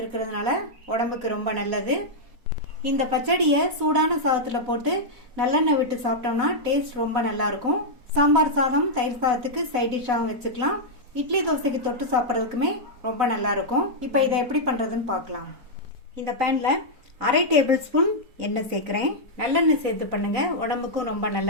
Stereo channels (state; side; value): late; left; 4.1 ms